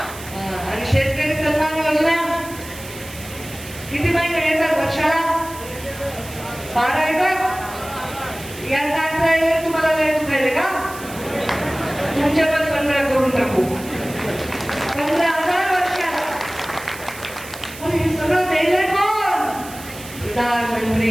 आणि शेतकरी सन्मान योजना किती महिने येतात वर्षाला? 12 येतात. यांना 18 येतात. तुम्हाला लय दुखायले का? तुमच्या पण 15 करून टाकू. 15,000 वर्षाला. पण हे सगळं द्यायला कोण?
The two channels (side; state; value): right; noise; hiss, 15 dB below the sound